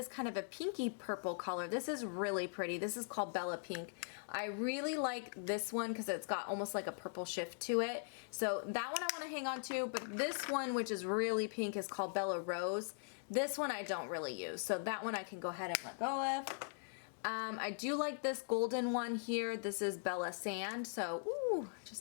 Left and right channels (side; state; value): right; silent; digital silence